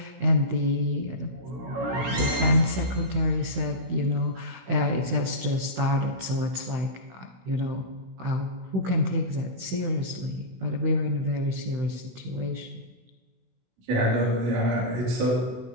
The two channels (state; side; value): late; left; 16 ms